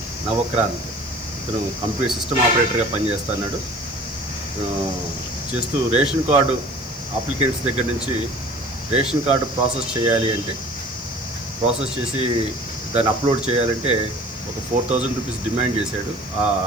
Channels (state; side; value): noise; left; hiss, 23 dB below the sound